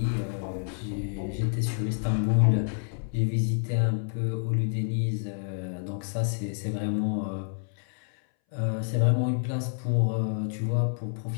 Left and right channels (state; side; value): silent; right; 59 dB below the other